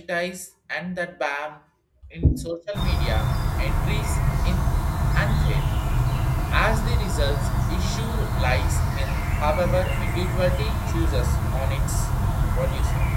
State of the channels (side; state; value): both; identical; correlation 1.00